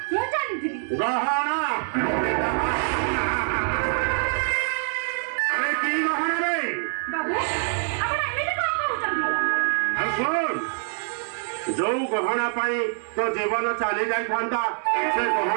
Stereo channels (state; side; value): silent; left; 55 dB below the other